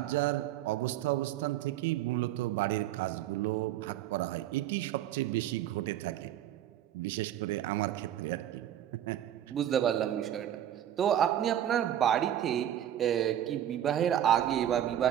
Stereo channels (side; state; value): left; quieter; 11.4 dB